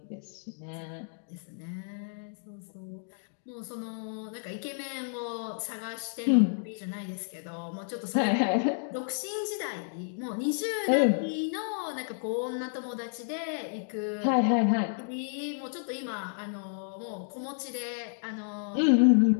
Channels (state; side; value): silent; right; digital silence